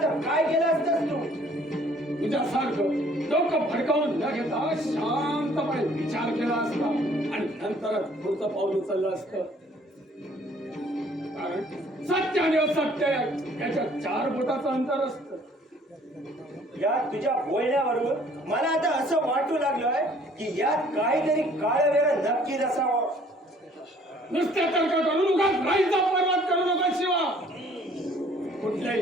तर काय केलं असतंस तू? तुझ्यासारखं डोकं फडकावून न घेता शांतपणे विचार केला असता आणि नंतरच पुढचं पाऊल उचललं असतं. कारण सत्य आणि असत्य याच्या 4 बोटाचं अंतर असतं. या तुझ्या बोलण्यावरून मला आता असं वाटू लागलंय की यात काहीतरी काळवेर नक्कीच असावं. नुसत्या तर्क करून उगाच राईचा पर्वत करू नका शिवा.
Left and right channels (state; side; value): normal; both; correlation 0.58